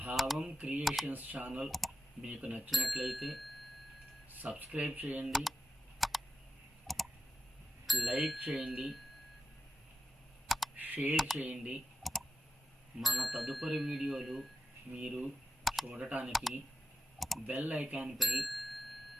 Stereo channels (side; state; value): both; normal; correlation 0.90